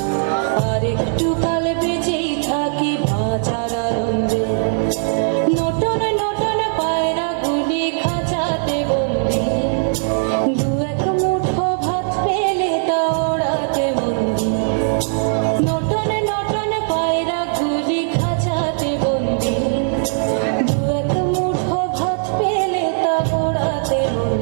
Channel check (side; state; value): left; silent; digital silence